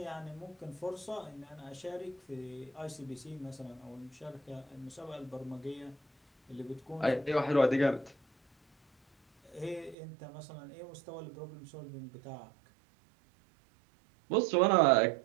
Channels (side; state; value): left; drops out; at 10.0 s